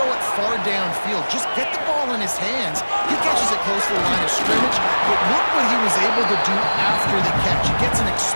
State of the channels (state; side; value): inverted; both; correlation -1.00